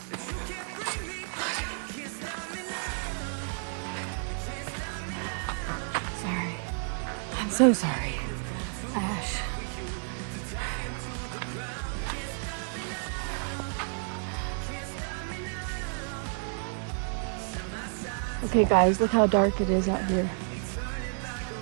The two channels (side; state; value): left; silent; 55 dB below the other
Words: Sorry. I'm so sorry. Ash. Okay guys, look how dark it is out here.